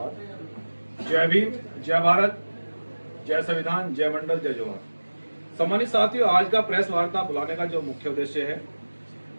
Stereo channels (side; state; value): both; inverted; correlation -1.00